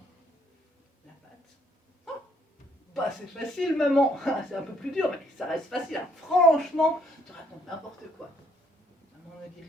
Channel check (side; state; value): both; normal; correlation 0.67